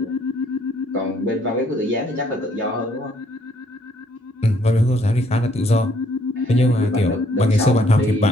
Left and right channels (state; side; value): normal; both; correlation 0.66